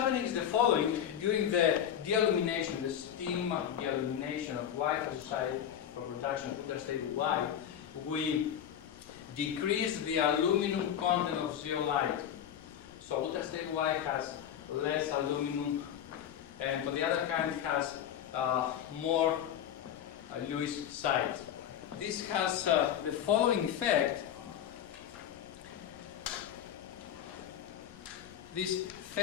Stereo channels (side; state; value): right; quieter; 9.7 dB